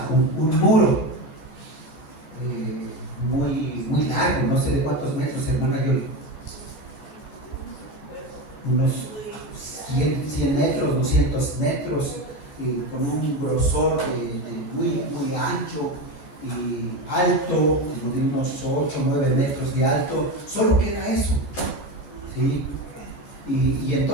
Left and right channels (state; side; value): late; right; 13 ms